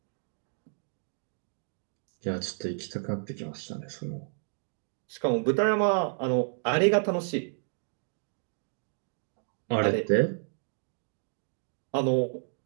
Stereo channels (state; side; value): silent; left; digital silence